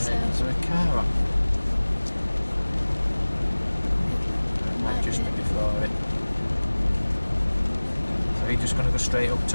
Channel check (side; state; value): both; inverted; correlation -1.00